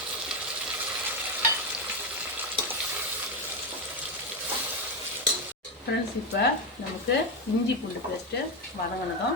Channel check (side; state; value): both; normal; correlation 0.10